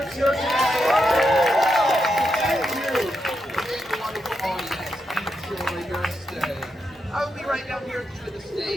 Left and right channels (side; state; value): both; normal; correlation 0.84